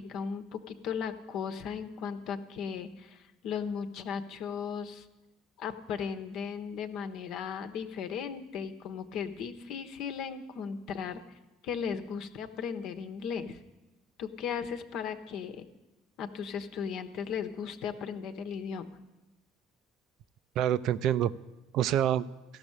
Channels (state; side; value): normal; both; correlation 0.50